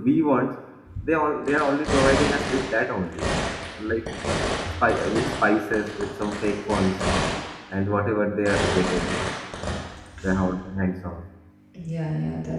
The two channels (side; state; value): both; identical; correlation 1.00